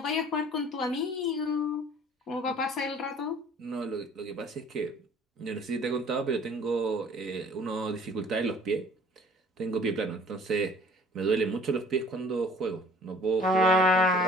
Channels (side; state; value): both; normal; correlation 0.51